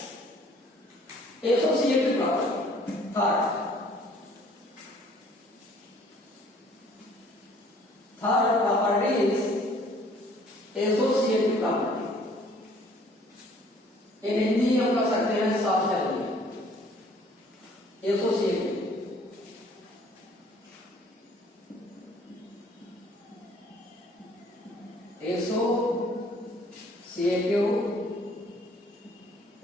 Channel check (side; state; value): both; normal; correlation 0.57